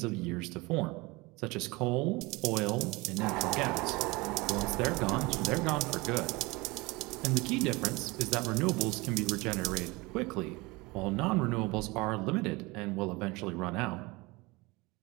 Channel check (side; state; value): left; quieter; 23.7 dB